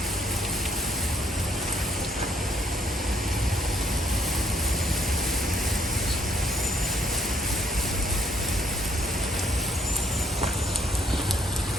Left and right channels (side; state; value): both; normal; correlation 0.68